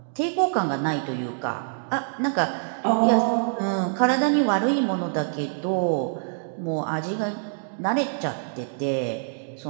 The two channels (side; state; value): left; silent; digital silence